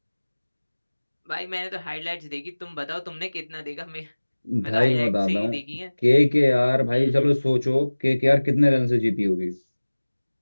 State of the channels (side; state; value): both; inverted; correlation -1.00